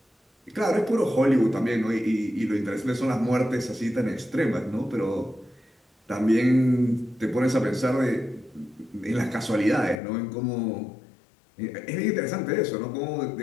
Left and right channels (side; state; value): right; drops out; at 10.0 s